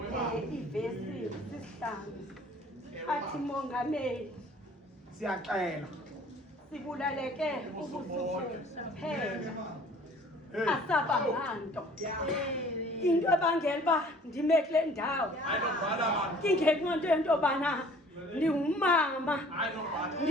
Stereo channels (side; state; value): both; normal; correlation 0.52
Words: Ivesi isihlanu. Athi mongameli. Siyaxela. Sibulaleke ubusuku phela. Asabanganto. Into ebangela uba ndime kule ndawo. Ingenqonto yento yobana ndingumama.